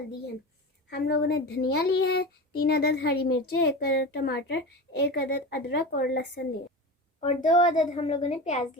है। हम लोगों ने धनिया ली है, 3 अदद हरी मिर्चें, 1 अदद टमाटर, 1 अदद अदरक और लहसुन लिए और 2 अदद हम लोगों ने प्याज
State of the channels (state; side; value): normal; both; correlation 0.27